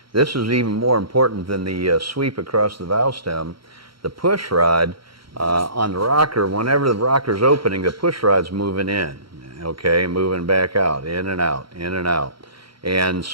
this is even more important than the sweep across the valve stem. The push rod on the rocker, whenever the rocker's opening, the push rod's moving in, okay, moving back out, in and out, in and out. And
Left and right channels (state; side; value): late; left; 0.74 ms